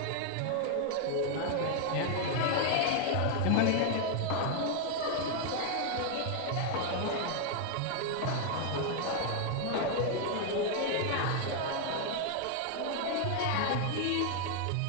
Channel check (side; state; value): both; different; correlation 0.00